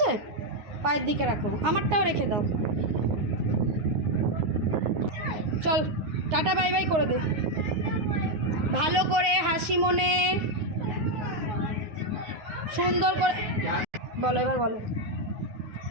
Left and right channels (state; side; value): late; left; 9.5 ms